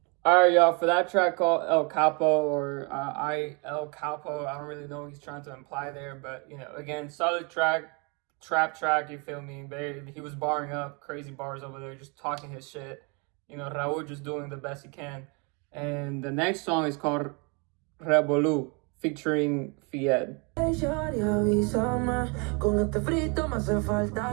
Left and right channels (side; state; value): left; quieter; 32.6 dB